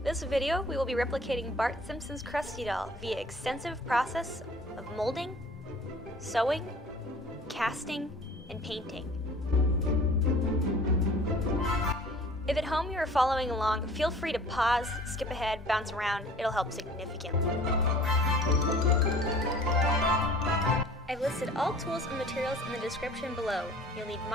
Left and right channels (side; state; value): both; normal; correlation 0.48